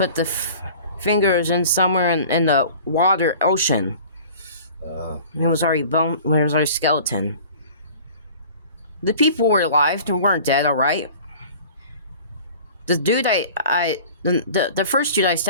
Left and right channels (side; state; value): both; inverted; correlation -0.44